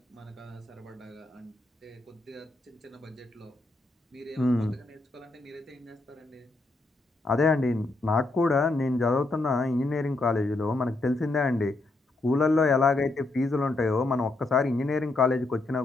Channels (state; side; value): quieter; right; 3.1 dB